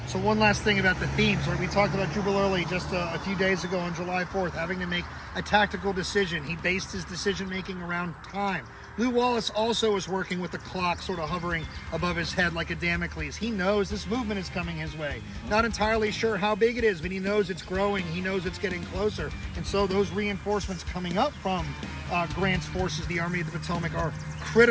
So one last thing about the themes. We talked about Jubal Early just a few days ago on July 4th, having to make a tactical decision. He based his decision-making around time. Lew Wallace also is working with the clock sort of hovering above his head like a Damocles. He knows this movement is coming his way. Not entirely sure how big it is, but he knows it's growing. He knows it's getting closer. And so those reinforcements coming up from Grant's forces, the Army of the Potomac, are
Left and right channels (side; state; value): both; identical; correlation 1.00